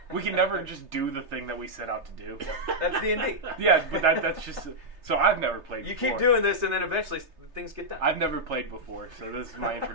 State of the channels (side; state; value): left; late; 3.3 ms